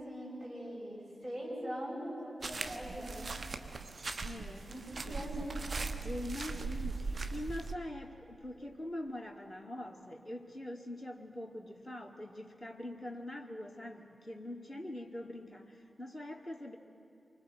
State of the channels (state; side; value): normal; both; correlation 0.90